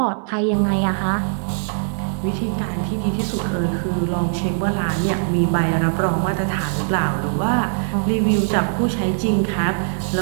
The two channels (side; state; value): left; silent; digital silence